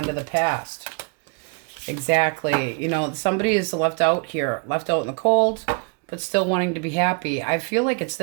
to the past. Exactly. You know, somebody is left out here. Left out in the cold, but still wanting to be happy. I feel like it's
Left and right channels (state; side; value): quieter; left; 36.5 dB